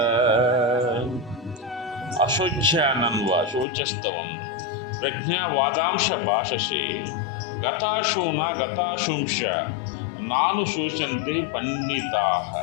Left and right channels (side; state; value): right; drops out; at 3.7 s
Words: అశోచ్యానన్వ శోచస్తవం ప్రజ్ఞావాదాంశ భాషసే గతాశూన గతాశుంశ నాను శోచంతి పండితా.